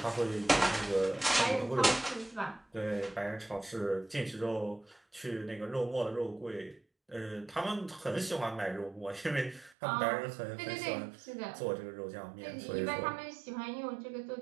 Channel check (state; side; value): drops out; left; at 9.8 s